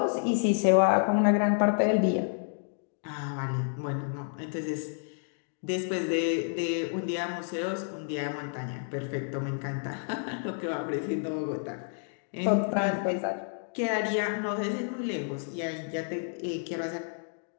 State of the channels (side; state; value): right; silent; digital silence